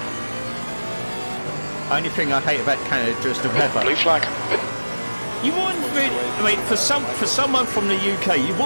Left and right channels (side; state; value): both; inverted; correlation -1.00